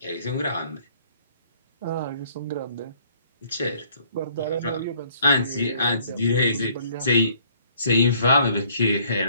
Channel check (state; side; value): inverted; both; correlation -0.60